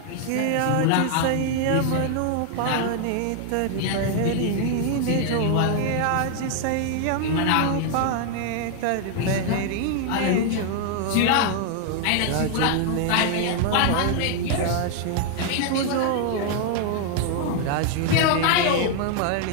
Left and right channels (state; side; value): different; both; correlation 0.00